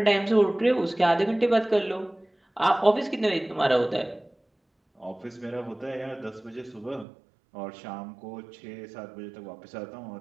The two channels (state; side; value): drops out; left; at 7.1 s